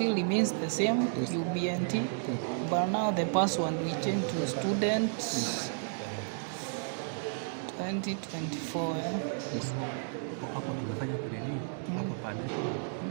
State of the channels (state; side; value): silent; left; digital silence